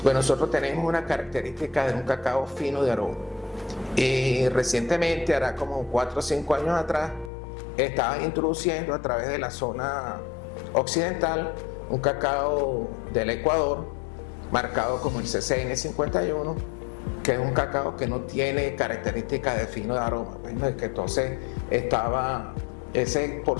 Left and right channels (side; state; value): right; drops out; at 7.3 s